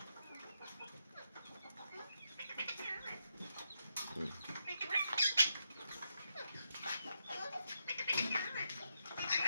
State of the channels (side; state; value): both; inverted; correlation -0.83